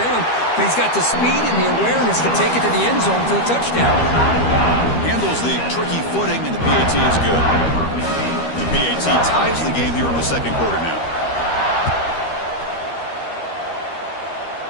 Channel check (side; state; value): right; late; 13 ms